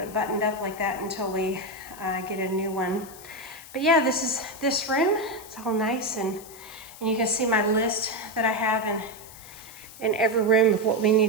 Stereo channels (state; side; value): noise; left; hiss, 17 dB below the sound